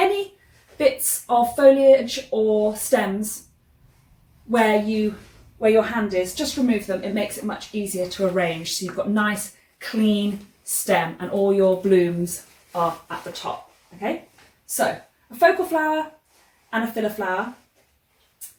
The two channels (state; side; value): identical; both; correlation 1.00